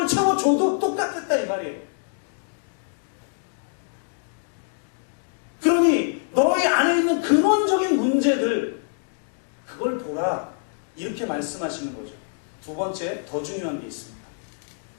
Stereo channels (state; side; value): silent; right; digital silence